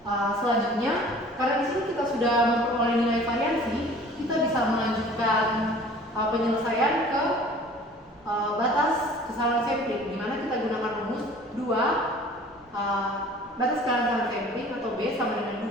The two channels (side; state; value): both; normal; correlation 0.48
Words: Selanjutnya, karena di sini kita sudah memperoleh nilai variansi, kita bisa melanjutkan penyelesaian ke batas kesalahan sampling, di mana kita gunakan rumus 2 batas kesalahan sampling atau B sama dengan 2